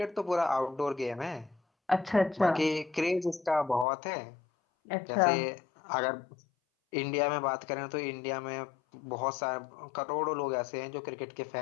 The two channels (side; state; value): right; drops out; at 3.9 s